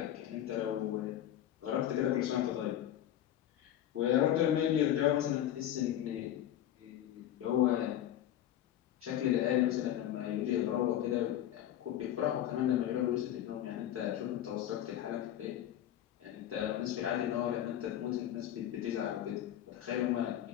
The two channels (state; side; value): quieter; right; 11.6 dB